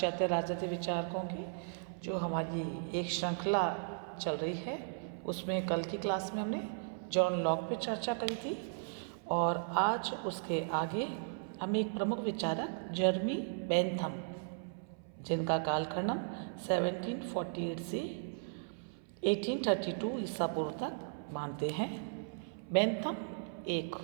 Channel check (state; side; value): silent; left; 54 dB below the other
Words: राजनीतिक विचारकों की जो हमारी एक श्रृंखला चल रही है, उसमें कल की क्लास में हमने जॉन लॉक पे चर्चा करी थी और आज उसके आगे हम एक प्रमुख विचारक जर्मी बेंथम, जिनका कालखंड 1748 से 1832 ईसा पूर्व तक मानते हैं। बेंथम एक